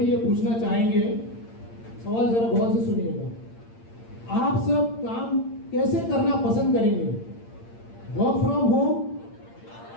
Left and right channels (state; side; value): late; right; 8.7 ms